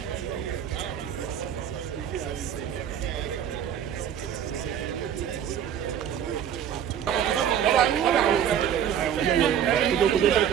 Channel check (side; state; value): left; quieter; 9.2 dB